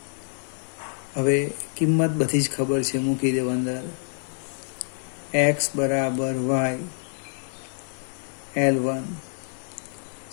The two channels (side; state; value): right; silent; digital silence